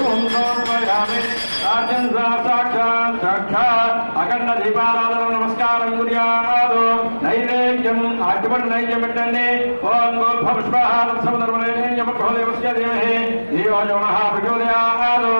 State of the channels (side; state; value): both; inverted; correlation -1.00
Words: అఖండ దీపారాధన నమస్కారం గుర్యాదు నైవేద్యం అటువంటి నైవేద్యం పెట్టండి ఓం గోల్భపుష్పహారసమధర్మనైవేద్యమహోదేవస్య ధీమహి దేవయోనః ప్రచోదయాదు